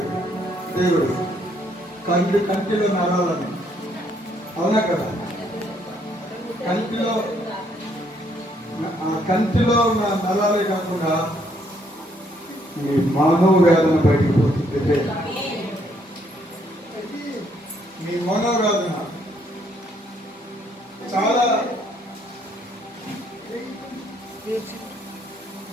దేవుడు కంటిలో నరాలని. అవునా కదా? కంటిలో ఉన్న నరాలే కాకుండా మీ మనోవేదన బయటికి పోతుంది. మీ మనోవేదన చాలా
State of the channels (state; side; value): normal; both; correlation 0.69